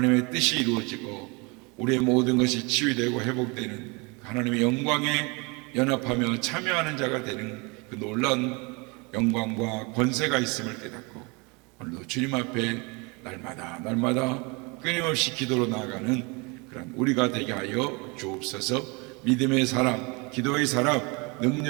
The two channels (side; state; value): left; quieter; 28.8 dB